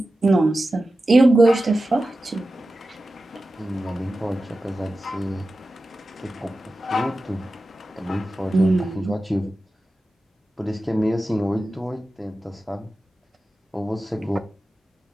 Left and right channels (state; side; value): normal; both; correlation 0.94